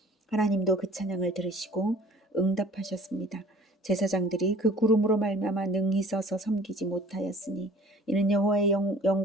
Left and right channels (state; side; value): normal; both; correlation 0.50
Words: 하나님도 그 찬양을 들으시고 응답하셨습니다. 제사장들이 그 구름으로 말미암아 능히 서서 섬기지 못하였으니 이는 여호와의